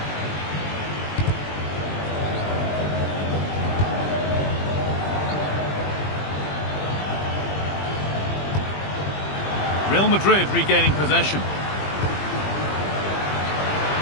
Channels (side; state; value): right; late; 20 ms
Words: Real Madrid regaining possession.